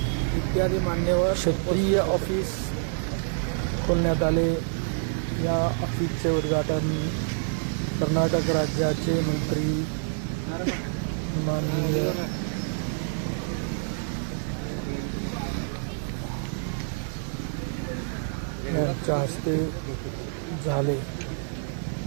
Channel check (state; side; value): silent; left; digital silence